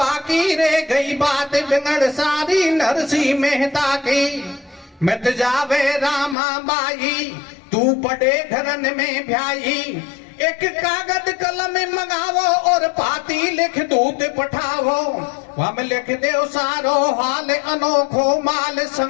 रह गई बात बिगड़ सारी नरसिंह मेहता की। मिट जावे रामाबाई तू बड़े घरन में भ्याई, एक कागज कलम मंगावो और पाती लिख दूत पठावो। हम लिख दो सारो हाल अनोखो, माल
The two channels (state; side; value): drops out; right; at 6.4 s